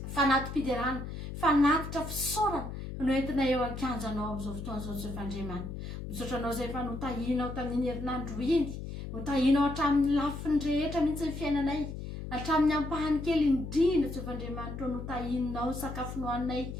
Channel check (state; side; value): noise; left; hum, 7 dB below the sound